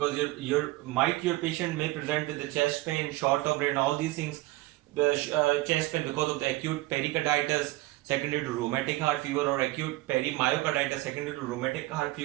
your patient may present with the chest pain, short of breath, and all these things. The chest pain because of the acute pericarditis secondary to rheumatic heart fever, or acute perimyocarditis secondary to rheumatic heart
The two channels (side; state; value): left; quieter; 18.9 dB